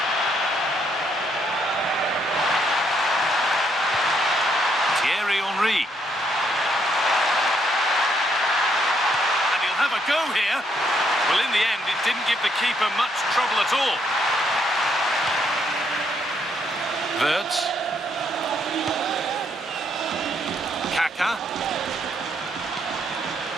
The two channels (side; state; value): both; normal; correlation 0.73